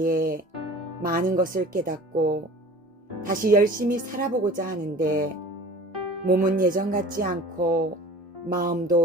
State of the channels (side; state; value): both; normal; correlation 0.43